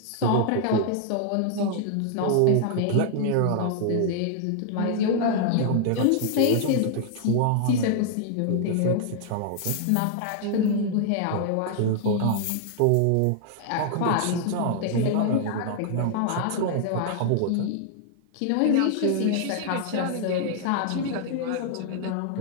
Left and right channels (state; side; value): different; both; correlation -0.01